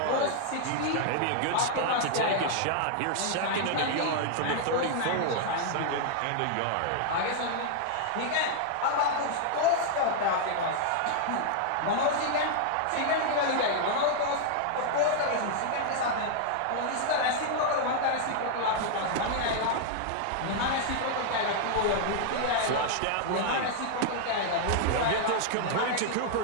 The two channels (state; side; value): different; both; correlation -0.01